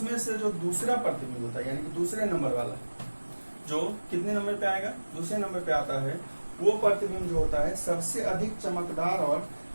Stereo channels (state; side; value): inverted; both; correlation -1.00